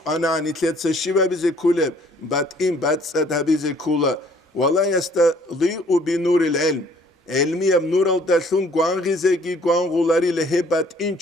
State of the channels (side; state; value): both; normal; correlation 0.59